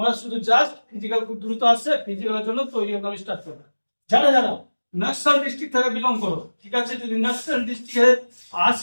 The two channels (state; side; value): inverted; both; correlation -1.00